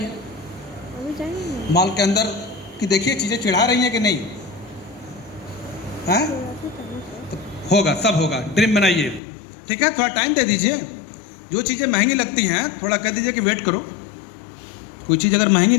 अभी जाएंगे? मॉल के अंदर कि देखिए चीज़ें चिढ़ा रही हैं कि नहीं, हैं? तो होगा, सब होगा। ड्रीम बनाइए, ठीक है। थोड़ा टाइम दे दीजिए। जो चीज़ें महंगी लगती हैं थोड़ा कह दीजिए कि वेट करो। कोई चीज़ अगर महंगी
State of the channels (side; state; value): right; drops out; at 9.2 s